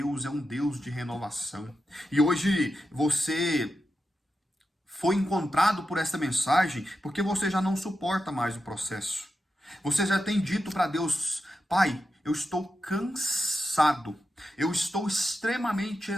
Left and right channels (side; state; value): both; normal; correlation 0.89